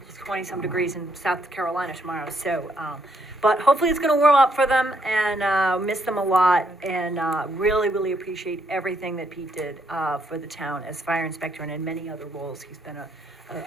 20-some degrees in South Carolina tomorrow, so, but hopefully it's gonna warm up for them and, miss them a lot and, really, really appreciate everything that Pete did, for the town as fire inspector and in many other roles. He's been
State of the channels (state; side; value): normal; both; correlation 0.73